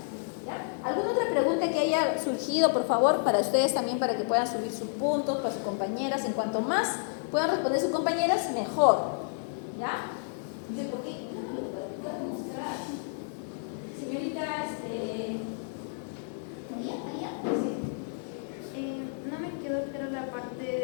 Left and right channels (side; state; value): right; silent; digital silence